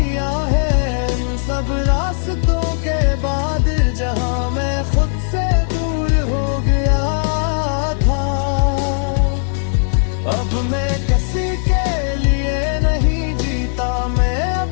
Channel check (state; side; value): silent; right; 63 dB below the other